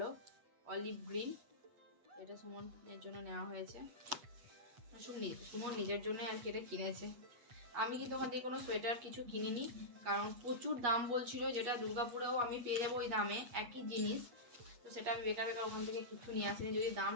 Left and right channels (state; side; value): late; left; 8.4 ms